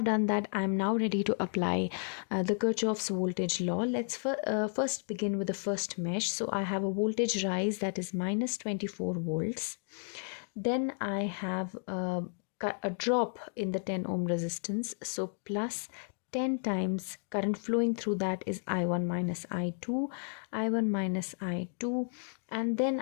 done that, I'm now ready to apply the Kirchhoff's voltage law. Let's first begin with the first mesh. So I have a voltage rise that is minus 24 volts. Then I have a drop in the 10 ohm resistance. So plus 10 times current flowing through that is I1 minus I2, I1 minus I2, and then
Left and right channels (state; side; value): silent; right; 56 dB below the other